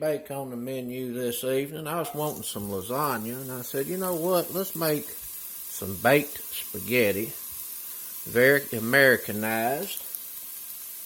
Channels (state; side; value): identical; both; correlation 1.00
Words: on the menu this evening. I was wanting some lasagna, and I said, you know what? Let's make some baked spaghetti. Very Americanized.